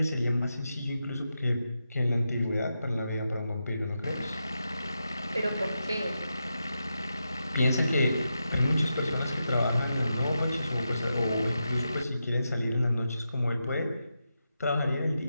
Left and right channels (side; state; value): both; inverted; correlation -0.88